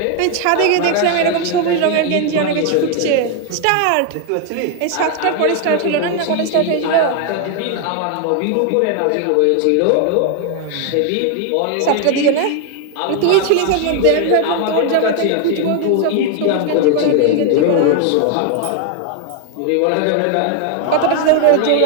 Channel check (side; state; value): both; different; correlation 0.01